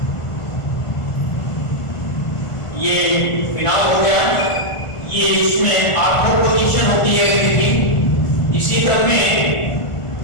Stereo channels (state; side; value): late; right; 1.4 ms